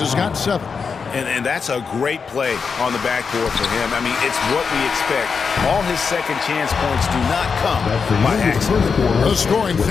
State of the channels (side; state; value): right; quieter; 5.6 dB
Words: has got 7. And that's a great play on the backboard for him. I mean, it's what we expect. All his second chance points do not come by accident. The scoring